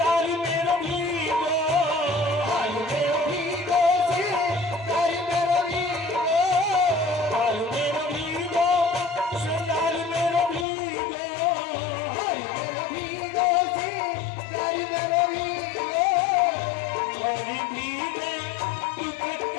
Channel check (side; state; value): right; drops out; at 10.7 s